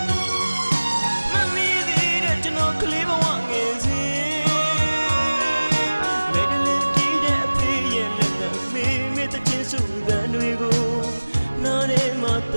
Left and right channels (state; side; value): inverted; both; correlation -1.00